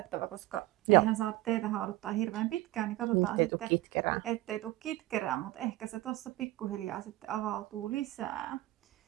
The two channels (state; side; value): quieter; left; 17.6 dB